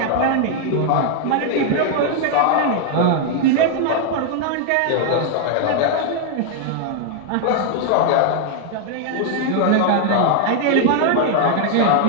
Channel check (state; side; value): different; both; correlation 0.00